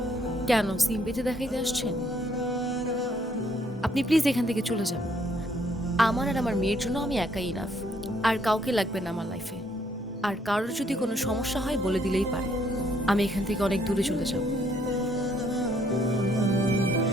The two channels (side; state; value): both; normal; correlation 0.68